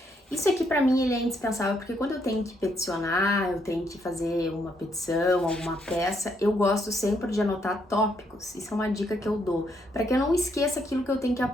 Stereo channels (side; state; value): both; normal; correlation 0.74